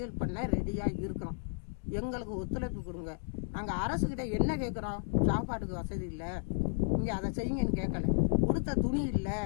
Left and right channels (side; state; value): right; silent; digital silence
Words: பண்ண ரெடியாக இருக்கிறோம். எங்களுக்கு ஒத்துழைப்பு கொடுங்க. நாங்கள் அரசுகிட்ட என்ன கேட்குறோம்? சாப்பாட்டுக்கு வசதி இல்லை, இங்கே அதை செய்யுங்கன்னு கேட்கல. கொடுத்த துணி இல்லை,